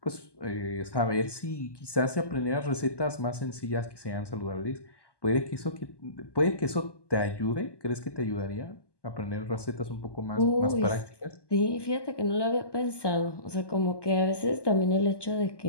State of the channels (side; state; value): right; late; 1.2 ms